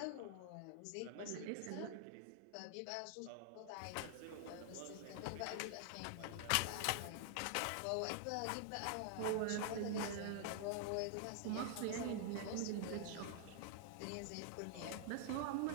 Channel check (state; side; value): different; both; correlation -0.01